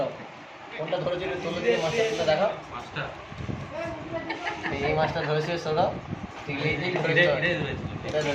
কোনটা ধরেছে তুলে দিয়ে মাছটা তুলে দেখা। মাছটা এই মাছটা ধরেছে সৌরভ। এটা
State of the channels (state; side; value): identical; both; correlation 1.00